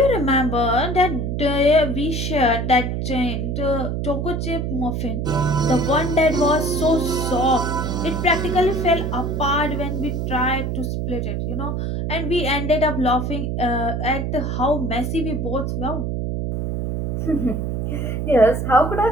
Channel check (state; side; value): noise; right; hum, 1 dB below the sound